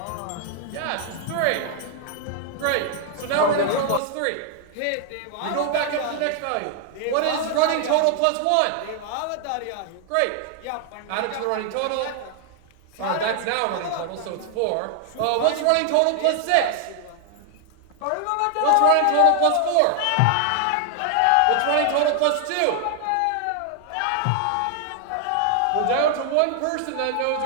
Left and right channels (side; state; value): both; different; correlation 0.00